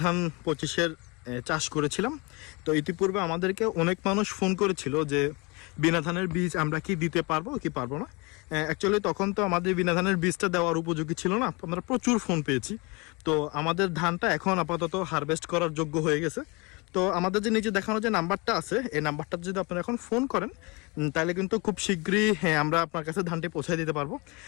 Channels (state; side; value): quieter; right; 27.8 dB